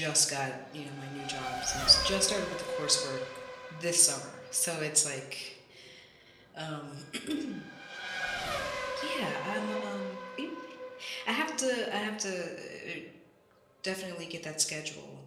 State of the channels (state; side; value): identical; both; correlation 1.00